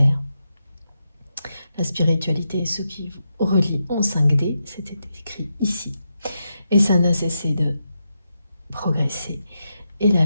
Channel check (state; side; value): inverted; both; correlation -0.85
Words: La spiritualité est ce qui vous relie en 5D, c'était écrit ici. Et ça n'a cessé de progresser. Et la